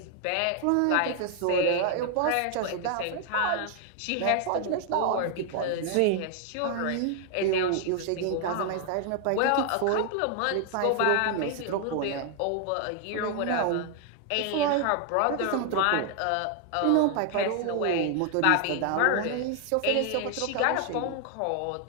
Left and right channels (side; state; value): both; different; correlation 0.00